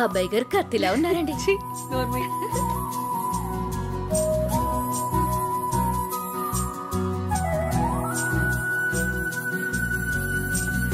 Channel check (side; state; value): both; identical; correlation 1.00